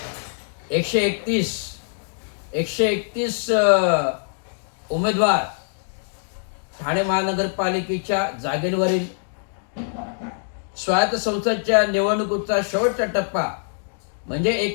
131 उमेदवार ठाणे महानगरपालिकेच्या जागेवरील स्वायत्त संस्थांच्या निवडणुकीचा शेवटचा टप्पा म्हणजे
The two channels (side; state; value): right; silent; digital silence